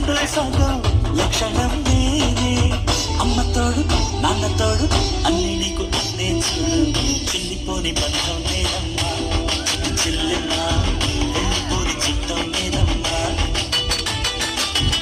సగం లక్షణం నేనే అమ్మ తోడు నాన్న తోడు అన్ని నీకు అన్నే చూడు చిల్లిపోని బంధం నేనమ్మా చెల్లెమ్మా వెళ్ళిపోని చిత్తం నేనమ్మా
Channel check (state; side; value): identical; both; correlation 1.00